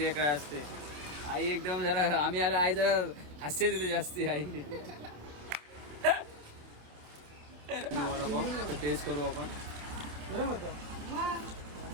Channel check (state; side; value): late; left; 28 ms